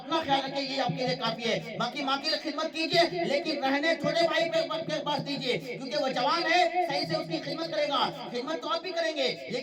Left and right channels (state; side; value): identical; both; correlation 1.00